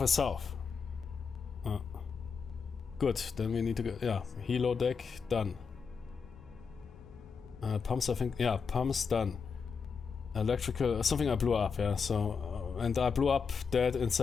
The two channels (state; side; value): quieter; right; 5.7 dB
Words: is south. Good, then we need to go. Yeah, helo deck done. Pumps, I think. Yeah, pumps done. Electrical, something I blew up. Yeah, so and I blew up that